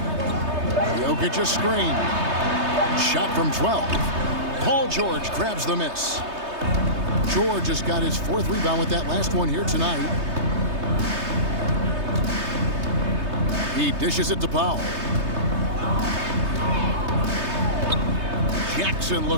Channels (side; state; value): left; late; 3.3 ms